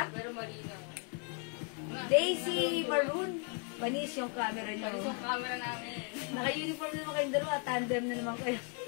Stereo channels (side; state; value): right; quieter; 36.8 dB